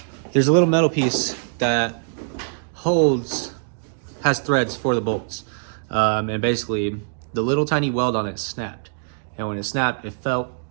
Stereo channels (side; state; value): left; silent; digital silence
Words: There's a little metal piece that has threads for the bolts. And basically, the little tiny weld on it snapped. And when it snapped, it fell